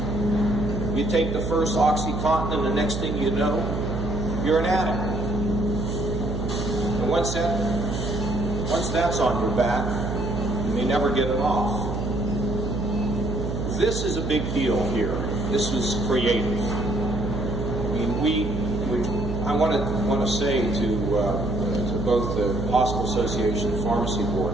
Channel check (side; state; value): right; noise; hum, 3 dB below the sound